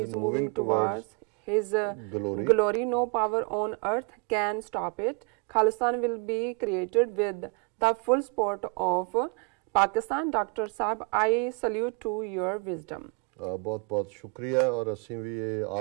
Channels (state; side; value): quieter; left; 33.6 dB